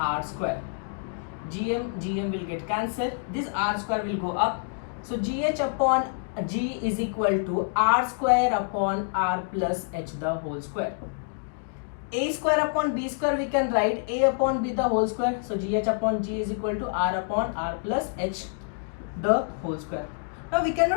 square. Gm will get cancelled. This r square will go up. So gh upon g is equal to r square upon r plus h the whole square. A square upon b square we can write a upon b the whole square. So gh upon g is equal to r upon r plus h the whole square. Now we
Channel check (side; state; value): right; silent; digital silence